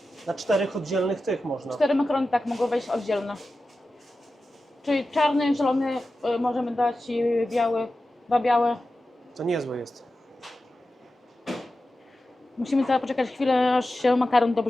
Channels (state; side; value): normal; both; correlation 0.93